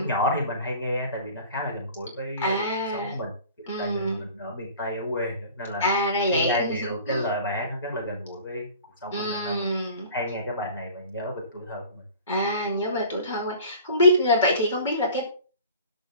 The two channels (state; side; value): inverted; both; correlation -0.44